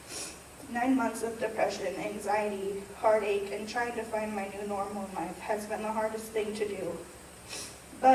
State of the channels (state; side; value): identical; both; correlation 1.00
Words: 9 months of depression, anxiety, heartache, and trying to find my new normal in life has been the hardest thing to do.